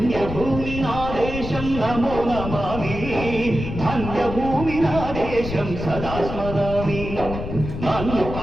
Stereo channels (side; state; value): left; noise; rumble, 7 dB below the sound